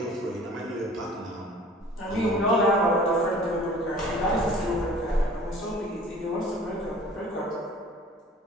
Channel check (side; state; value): both; normal; correlation 0.47